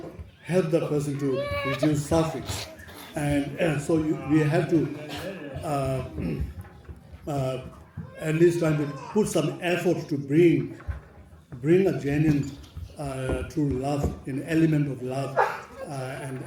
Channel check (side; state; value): both; identical; correlation 1.00